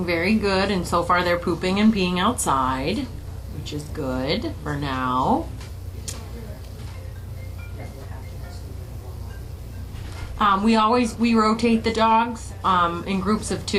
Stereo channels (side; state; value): both; identical; correlation 1.00